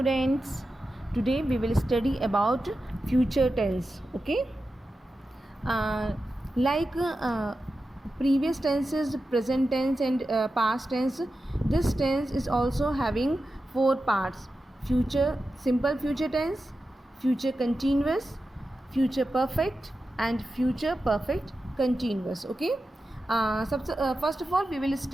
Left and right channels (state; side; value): normal; both; correlation 0.91